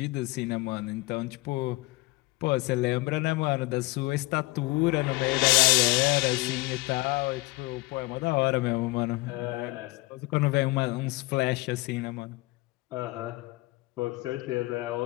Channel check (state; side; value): quieter; right; 21.9 dB